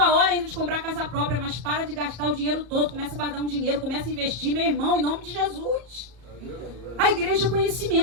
hora ainda de comprar casa própria, mas para de gastar o dinheiro todo, começa a guardar um dinheiro, começa a investir, meu irmão, em nome de Jesus. A igreja é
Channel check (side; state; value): left; late; 34 ms